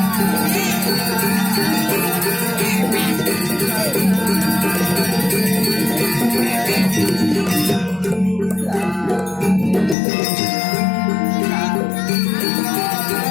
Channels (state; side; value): drops out; right; at 10.0 s